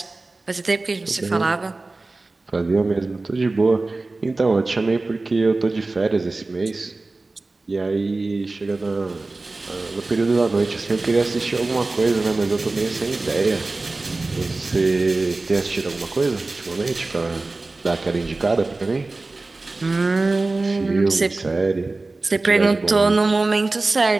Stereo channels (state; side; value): quieter; left; 3.3 dB